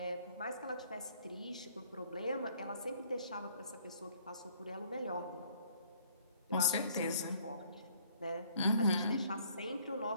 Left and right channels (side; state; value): both; inverted; correlation -0.61